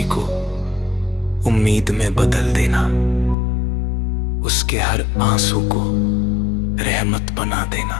को उम्मीद में बदल देना, उसके हर आंसू को रहमत बना देना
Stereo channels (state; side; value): drops out; right; at 3.4 s